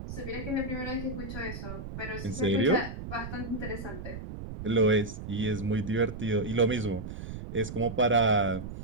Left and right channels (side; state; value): right; noise; rumble, 9 dB below the sound